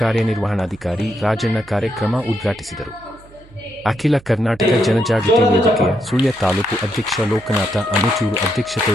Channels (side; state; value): right; noise; hum, 24 dB below the sound